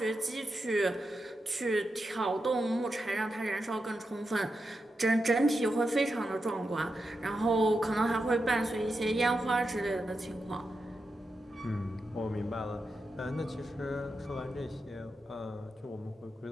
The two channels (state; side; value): normal; both; correlation 0.88